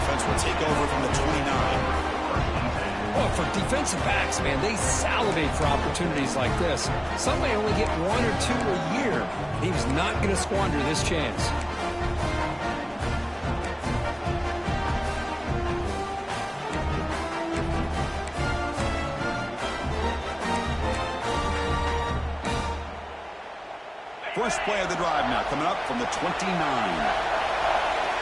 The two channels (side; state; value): both; identical; correlation 1.00